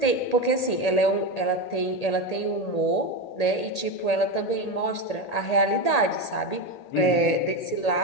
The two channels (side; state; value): right; late; 1.8 ms